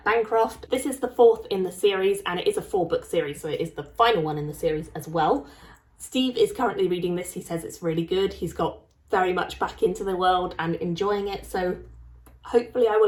Bancroft. This is the fourth in the series, and it is a 4-book series, so it is the final one in the series as well. Steve is currently reading this. He says it's really good. He's got very much back into the world and enjoying it, so hopefully I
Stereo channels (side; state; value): both; identical; correlation 1.00